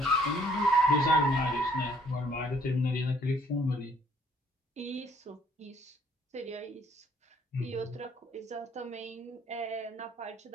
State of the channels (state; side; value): normal; both; correlation 0.63